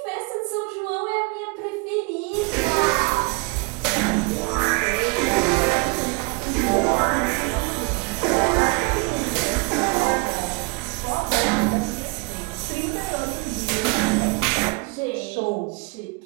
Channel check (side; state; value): left; quieter; 30.2 dB